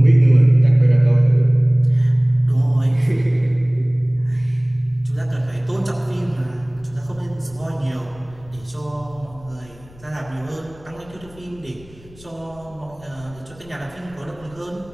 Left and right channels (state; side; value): noise; left; rumble, 23 dB below the sound